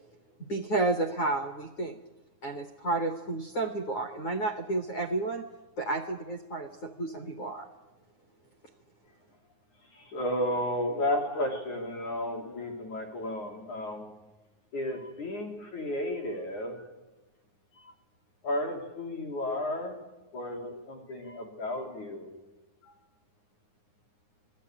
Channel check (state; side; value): late; right; 9.6 ms